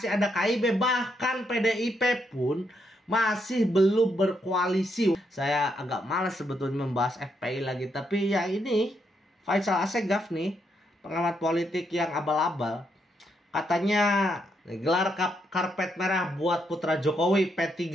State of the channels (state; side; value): normal; both; correlation 0.78